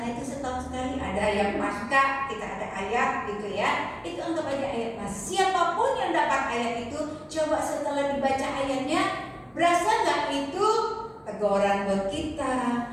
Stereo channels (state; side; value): identical; both; correlation 1.00